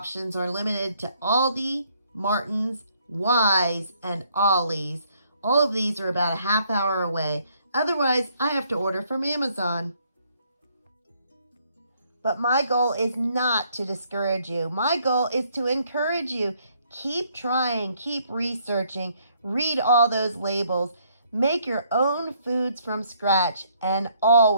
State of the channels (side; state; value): both; inverted; correlation -0.68